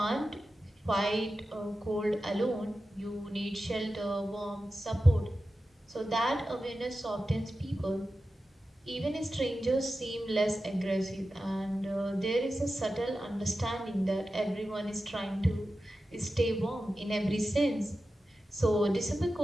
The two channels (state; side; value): normal; both; correlation 0.93